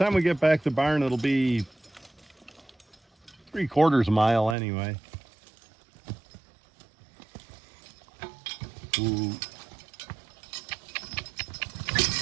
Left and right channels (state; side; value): drops out; left; at 4.5 s